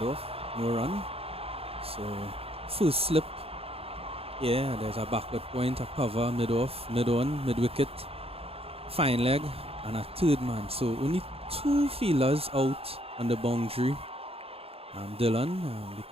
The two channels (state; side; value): late; left; 0.28 ms